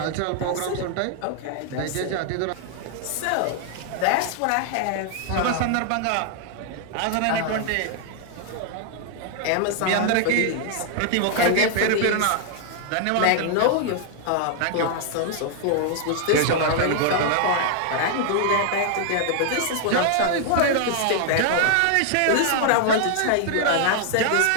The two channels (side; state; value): both; different; correlation 0.00